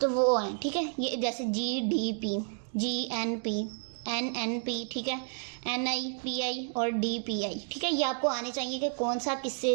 वो हैं। ठीक है, ये जैसे जीडीपी, जीएनपी, एनएनपी, ठीक है, एनआईपीआई और डीपीआई। ठीक है, ये आपको आने चाहिए कि कौन सा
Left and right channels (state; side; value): silent; left; 57 dB below the other